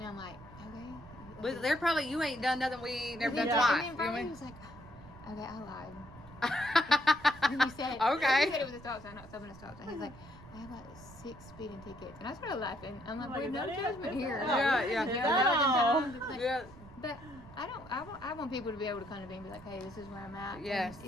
I'm like, okay. But they're probably, you ain't done nothing we ain't never done Yeah. twice. And then You know finally what I he mean? was like, okay, I lied. And he said, Okay. he said it was a stop sign, not stopping a stop sign. He's like, I have like 6 speeding tickets. And I started laughing. I'm like, Like, well, is no that it? judgment Is here. that it? Yeah, You know, yeah. that was like, Yeah. But I want people to be able to come to me and be like, hey, this is where I'm at. Yes. And,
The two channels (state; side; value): noise; right; rumble, 18 dB below the sound